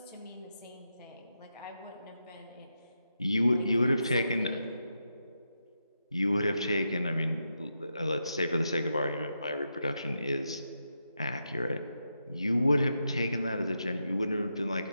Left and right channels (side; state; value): both; inverted; correlation -0.85